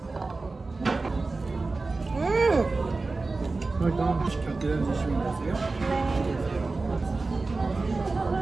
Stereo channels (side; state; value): left; quieter; 3.6 dB